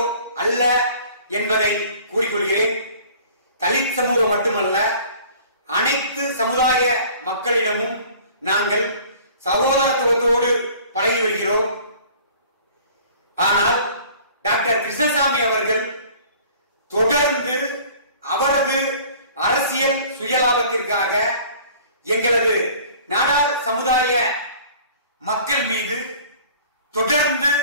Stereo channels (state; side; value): inverted; both; correlation -0.49